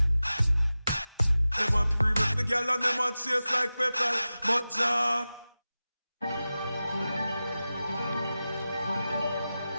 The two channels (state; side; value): inverted; both; correlation -0.95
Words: them a previous the girl and them a chase like petal. But Jah